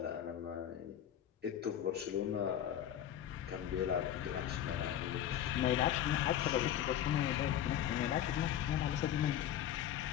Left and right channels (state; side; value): quieter; right; 10.7 dB